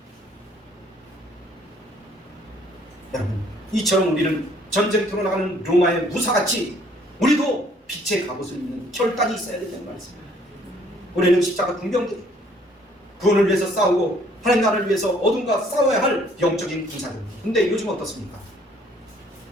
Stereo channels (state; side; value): normal; both; correlation 0.61